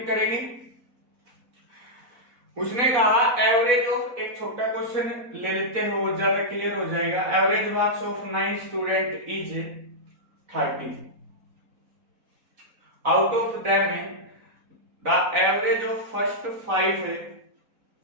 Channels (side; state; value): left; late; 4.1 ms